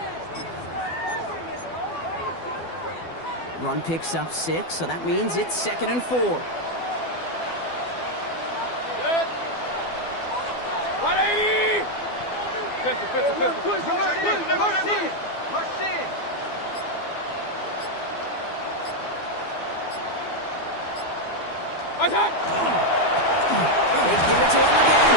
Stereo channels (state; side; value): late; right; 12 ms